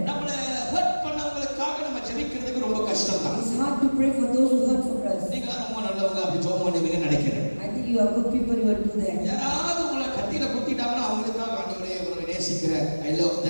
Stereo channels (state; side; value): inverted; both; correlation -1.00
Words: நம்மள ஹர்ட் பண்ணவங்களுக்காக நம்ம ஜெபிக்கிறதுக்கு ரொம்ப கஷ்டம் தான். It's hard to pray for those who hurt for us. நீங்க ரொம்ப நல்லவங்க அப்படி ஜெபம் பண்ணுவீங்கன்னு நினைக்கிறேன். I think you are good people, you will do that. யாராவது உங்களை கத்தியில குத்திட்டாங்கன்னா அவங்களுக்காக ஆண்டவரே உங்களை நேசிக்கிறேன், ஐ லவ்